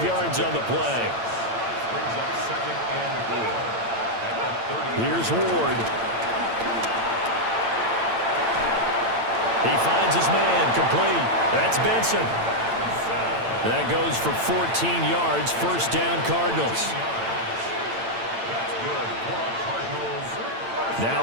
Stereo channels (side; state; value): left; late; 8.9 ms